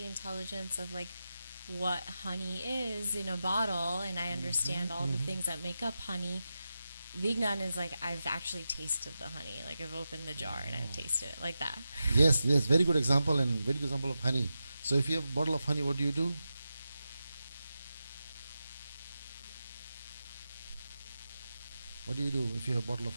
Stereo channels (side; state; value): both; inverted; correlation -0.90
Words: intelligence of like what honey is in a bottle, and I understand all the things that make up honey. Vignan is like I've actually tasted the honey, like I've opened the jar and I've tasted it, like that. Yes, very good example and very good example of honey. So if you have a bottle of honey, what do? What do you do if you have a bottle of